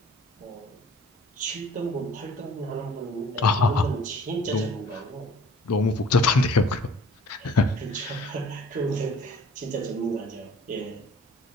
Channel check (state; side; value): normal; both; correlation 0.51